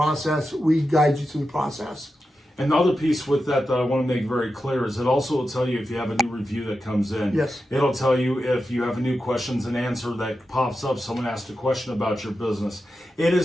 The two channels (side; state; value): both; normal; correlation 0.90